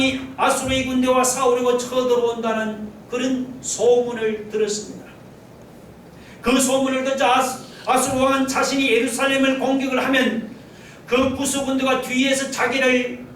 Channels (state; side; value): identical; both; correlation 1.00